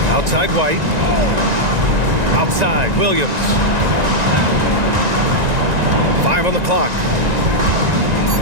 Outside White. Outside Williams. 5 on the clock.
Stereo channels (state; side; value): late; left; 1.9 ms